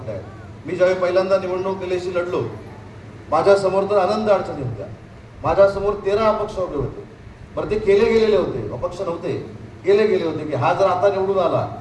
आहेत. मी ज्यावेळी पहिल्यांदा निवडणूक केल्याशी लढलो, माझ्यासमोर तर आनंद अडचणी होत्या. माझ्यासमोर 13 अपक्ष उभे होते. बरं, ते केले गेलेले होते, अपक्ष नव्हते, केले गेले होते की हा जर आता निवडून आला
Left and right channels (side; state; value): both; identical; correlation 1.00